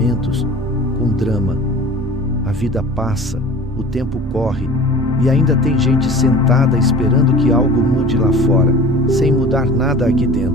com drama. A vida passa, o tempo corre, e ainda tem gente sentada esperando que algo mude lá fora, sem mudar nada aqui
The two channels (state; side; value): normal; both; correlation 0.41